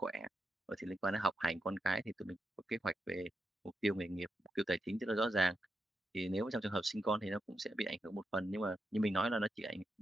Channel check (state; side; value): normal; both; correlation 0.86